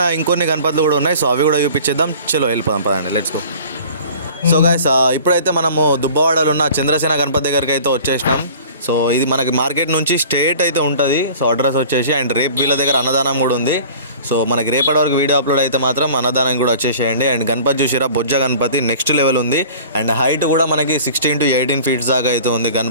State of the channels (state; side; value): inverted; both; correlation -0.44